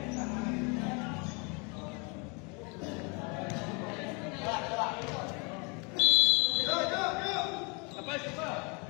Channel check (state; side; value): quieter; right; 31.9 dB